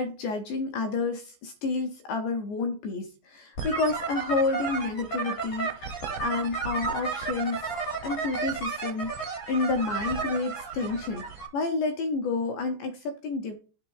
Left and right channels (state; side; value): late; right; 14 ms